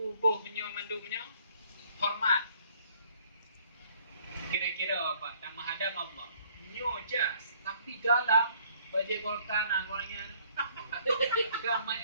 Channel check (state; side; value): inverted; both; correlation -0.60